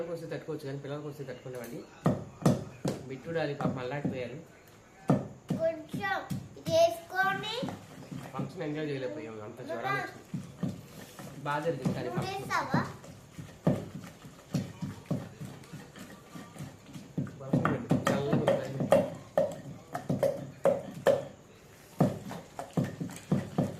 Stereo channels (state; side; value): identical; both; correlation 1.00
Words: వస్తే తట్టుకోవచ్చు కానీ పిల్లలకి వస్తే తట్టుకునేవాడి. బిట్టుడాలి పాప మళ్ళాడిపోయారు. ఫంక్షన్ ఎంజాయ్ చేయలేకపోయాము, అంత జ్వరాలు వచ్చింది. బాగా జరిగింది కానీ